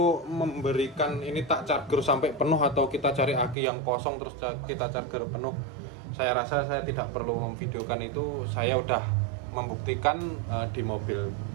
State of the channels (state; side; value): drops out; left; at 3.6 s